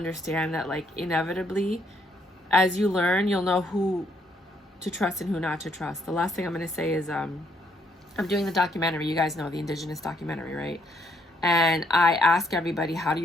that, like, inevitably, as you learn, you'll know who to trust and who not to trust. The last thing I'm going to say is I'm doing the documentary. You guys know the Indigenous documentary, right? And I ask everybody, how do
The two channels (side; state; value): both; normal; correlation 0.70